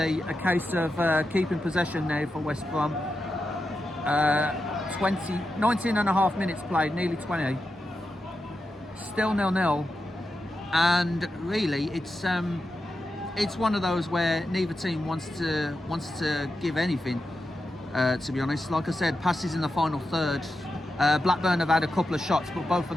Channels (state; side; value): normal; both; correlation 0.89